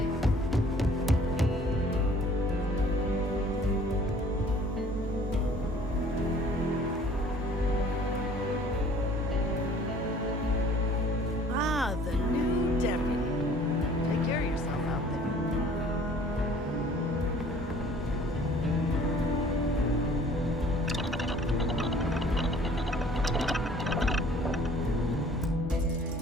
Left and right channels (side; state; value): both; normal; correlation 0.53